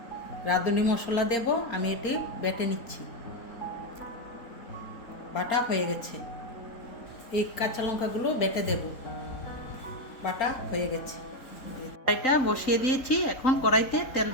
রাঁধুনি মশলা দেব, আমি এটি বেটে নিচ্ছি। বাটা হয়ে গেছে। এই কাঁচা লঙ্কাগুলো বেটে দেব। বাটা হয়ে গেছে। কড়াইটা বসিয়ে দিয়েছি, এখন কড়াইতে তেল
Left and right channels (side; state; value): right; late; 3.9 ms